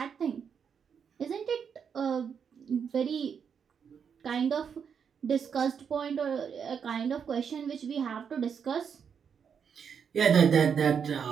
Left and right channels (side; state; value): left; quieter; 7.0 dB